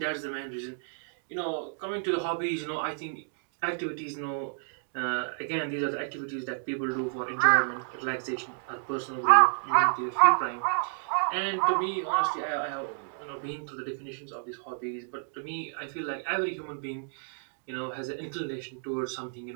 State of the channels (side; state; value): left; silent; digital silence